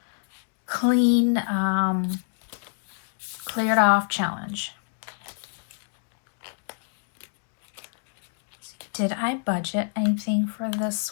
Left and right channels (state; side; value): silent; right; digital silence